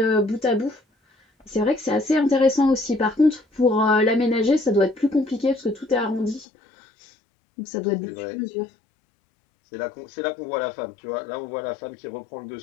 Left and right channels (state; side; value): drops out; right; at 6.5 s